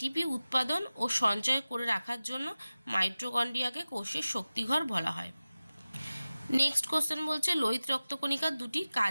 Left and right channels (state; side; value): inverted; both; correlation -0.96